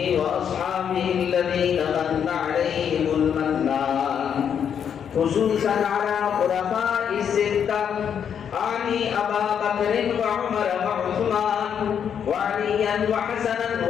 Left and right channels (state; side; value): quieter; right; 8.1 dB